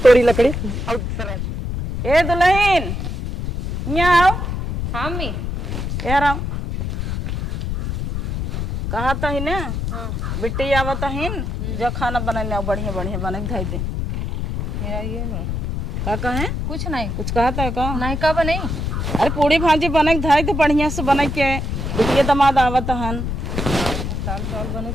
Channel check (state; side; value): noise; left; rumble, 3 dB below the sound